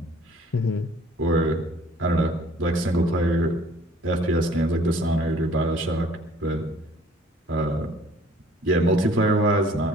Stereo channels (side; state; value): both; normal; correlation 0.55